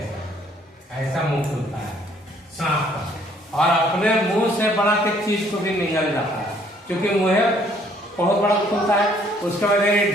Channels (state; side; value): normal; both; correlation 0.63